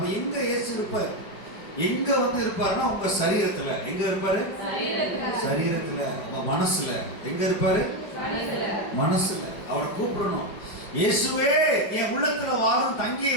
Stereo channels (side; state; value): right; late; 5.2 ms